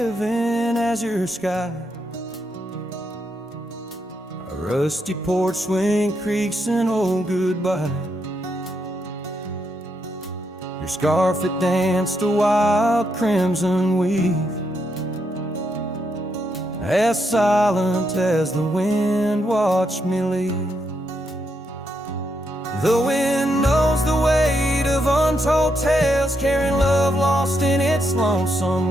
azure sky, a rusty porch swing creaks an old goodbye. Your scarf it danced a wild crimson weave, as silent as the wind watched me leave. The wind knows the weight of untold tales, carrying love lost in its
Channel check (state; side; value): normal; both; correlation 0.80